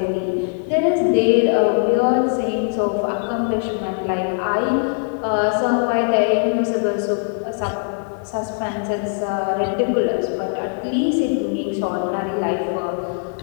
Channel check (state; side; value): silent; right; 57 dB below the other